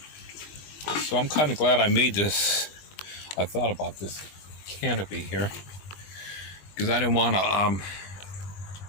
So I'm kind of glad I made this. I thought about this canopy here because I didn't want to.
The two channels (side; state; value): right; late; 21 ms